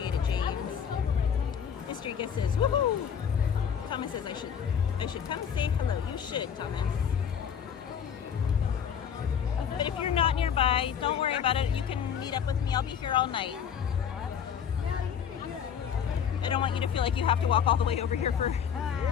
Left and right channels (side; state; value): right; quieter; 7.9 dB